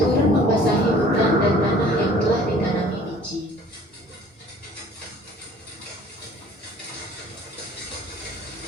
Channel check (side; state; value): both; normal; correlation 0.51